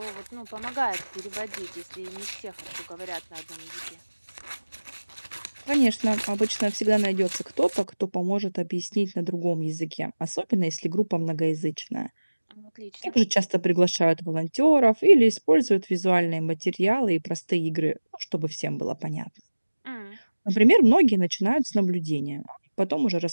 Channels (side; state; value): both; inverted; correlation -1.00